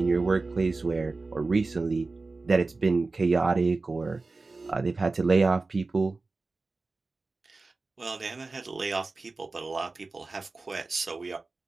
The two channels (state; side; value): quieter; left; 3.6 dB